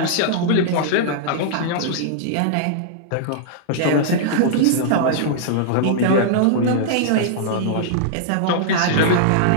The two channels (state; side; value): different; both; correlation -0.01